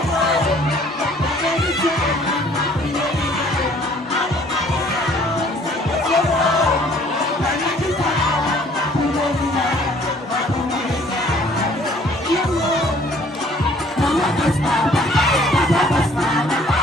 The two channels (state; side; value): normal; both; correlation 0.57